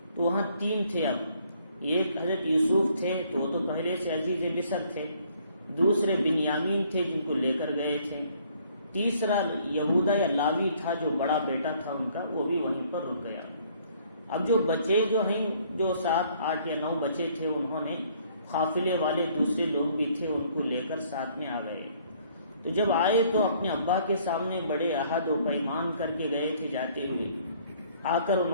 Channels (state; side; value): inverted; both; correlation -0.62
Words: تو وہاں 3 تھے۔ اب ایک حضرت یوسف تھے تو وہ تو پہلے سے عزیز مصر تھے، دوسرے بنیامین تھے جن کو لے کر گئے تھے، تیسرا یہودا یا لاوی تھا جو بڑا بیٹا تھا ان کا، وہ بھی وہیں پر رک گیا۔ اب جو بچے جو ہیں، جو 7، 8 یا 9 بچے تھے، انہوں نے قافلے والے دوسرے لوگ بھی تھے ان کو لے کر ساتھ میں آ گئے۔ تو جب آئے تو اپنے ابا کے سامنے بڑے عہد و پیمان کر کے گئے تھے، جاتے ہوئے آ کر